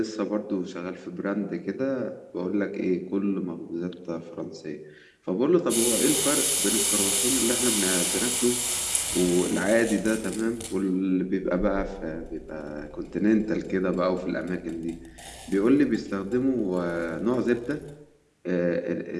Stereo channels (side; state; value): both; identical; correlation 1.00